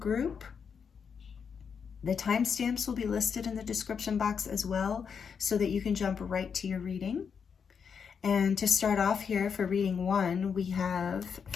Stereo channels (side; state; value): right; quieter; 6.5 dB